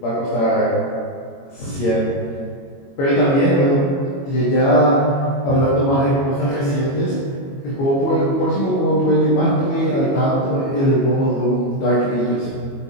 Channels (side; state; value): right; late; 22 ms